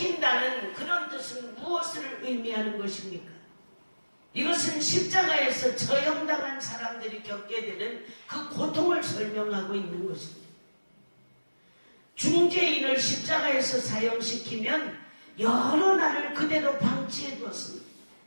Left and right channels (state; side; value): inverted; both; correlation -1.00